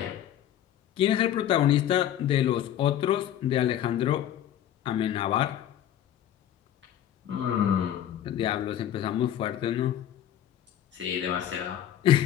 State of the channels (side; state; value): right; quieter; 11.0 dB